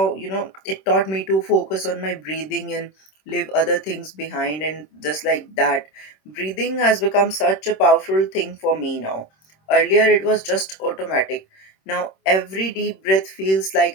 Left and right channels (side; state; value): right; late; 26 ms